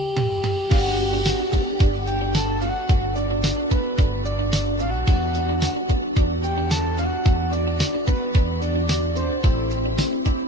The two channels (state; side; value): normal; both; correlation 0.51